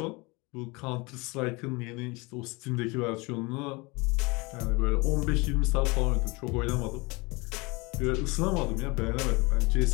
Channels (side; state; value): right; quieter; 26.0 dB